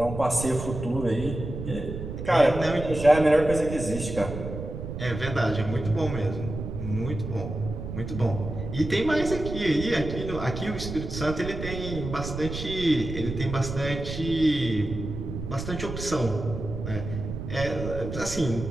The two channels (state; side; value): noise; right; rumble, 7 dB below the sound